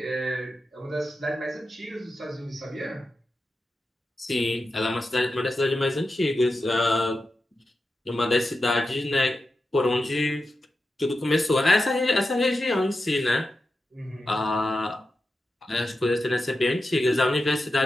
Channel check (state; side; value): normal; both; correlation 0.90